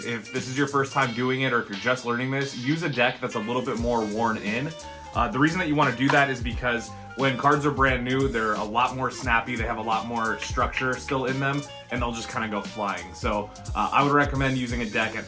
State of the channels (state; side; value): identical; both; correlation 1.00